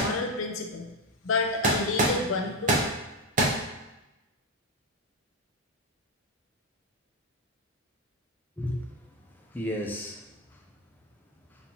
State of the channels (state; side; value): normal; both; correlation 0.09